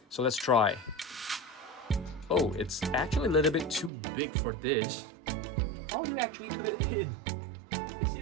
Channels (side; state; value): left; drops out; at 3.9 s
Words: So let's try. Oh, it's actually a little bit too big for this. How do you actually put it in? It